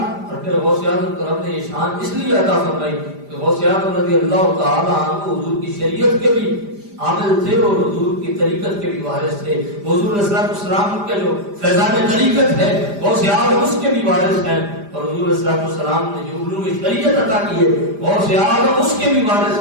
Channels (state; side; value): late; left; 5.0 ms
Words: اور پھر غوث اعظم کو رب نے یہ شان اس لیے عطا فرمائی کہ غوث اعظم رضی اللہ تعالیٰ عنہ حضور کی شریعت کے بھی عامل تھے اور حضور کی طریقت کے بھی وارث تھے۔ حضور علیہ السلام کے جو فیضان طریقت ہے غوث اعظم اس کے بھی وارث ہیں، اور حضور علیہ السلام نے جو علوم شریعت عطا کی ہے غوث اعظم اس کے بھی